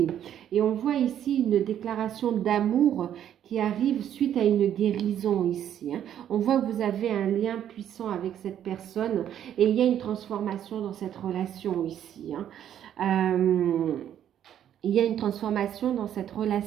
Et on voit ici une déclaration d'amour qui arrive suite à une guérison ici. On voit que vous avez un lien puissant avec cette personne et il y a une transformation dans cette relation ici. Il y a une transformation dans cette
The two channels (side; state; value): left; quieter; 10.2 dB